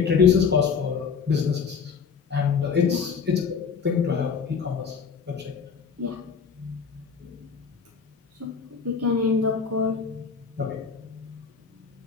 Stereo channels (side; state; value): right; quieter; 6.1 dB